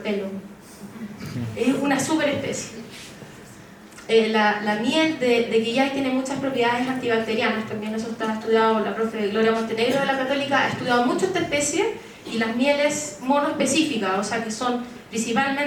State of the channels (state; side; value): identical; both; correlation 1.00